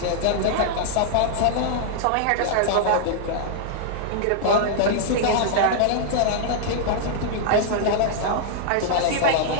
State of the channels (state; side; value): different; both; correlation -0.01